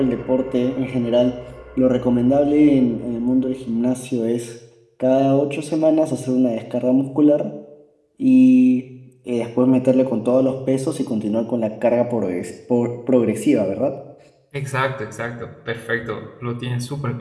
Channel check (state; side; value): identical; both; correlation 1.00